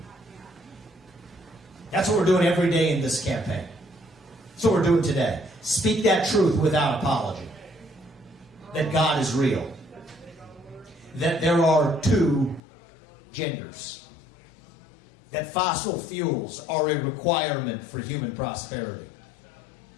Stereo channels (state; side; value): drops out; right; at 12.6 s